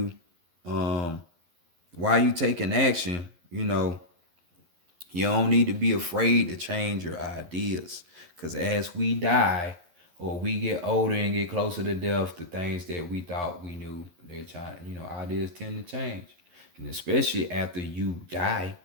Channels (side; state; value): left; late; 11 ms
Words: why you taking action. You know, you don't need to be afraid to change your ideas, because as we die or we get older and get closer to death, the things that we thought we knew, they're trying. You know, ideas tend to change, and especially after you die.